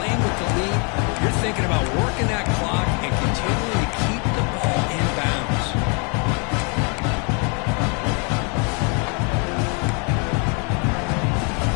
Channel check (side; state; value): right; quieter; 35.5 dB